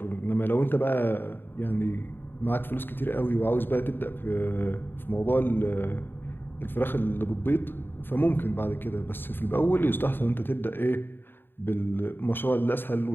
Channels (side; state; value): right; late; 0.098 ms